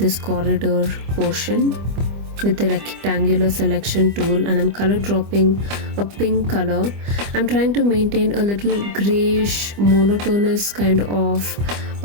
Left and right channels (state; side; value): late; left; 25 ms